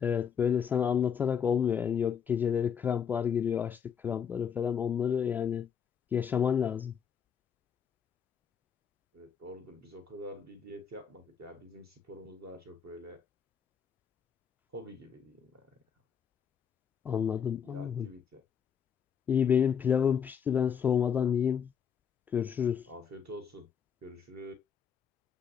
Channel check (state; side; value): quieter; right; 7.6 dB